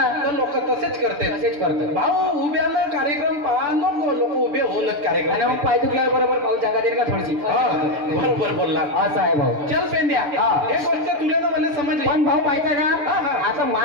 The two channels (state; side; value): late; left; 6.9 ms